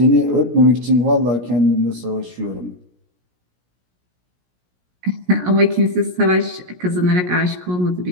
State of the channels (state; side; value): late; left; 17 ms